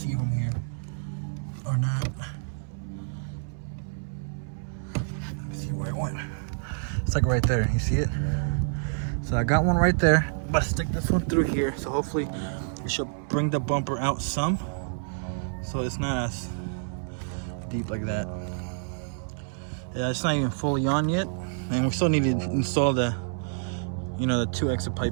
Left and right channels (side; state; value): left; silent; 59 dB below the other